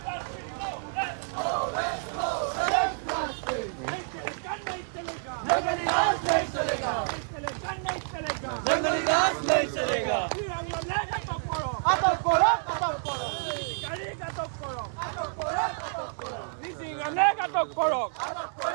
जंगली राज नहीं चलेगा नहीं चलेगा जंगली राज नहीं चलेगा लेगा तो करो गाड़ी का तो करो लेगा तो करो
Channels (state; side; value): silent; left; 59 dB below the other